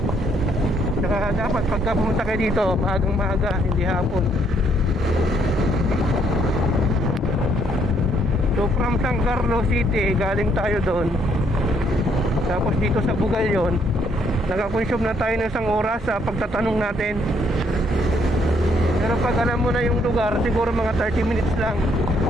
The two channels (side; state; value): both; normal; correlation 0.69